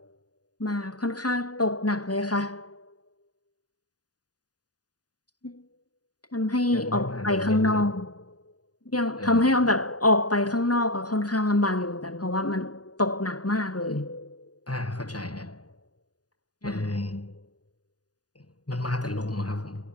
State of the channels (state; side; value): late; right; 0.68 ms